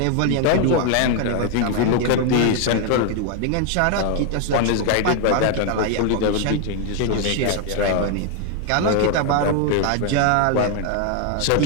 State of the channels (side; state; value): both; different; correlation 0.00